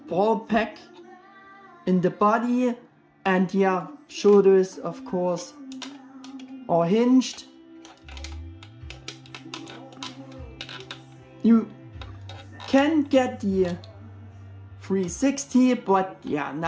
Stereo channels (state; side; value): identical; both; correlation 1.00